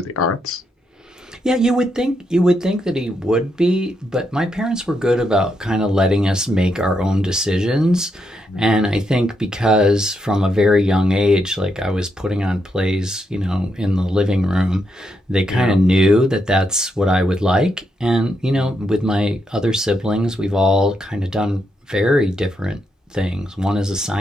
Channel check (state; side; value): normal; both; correlation 0.81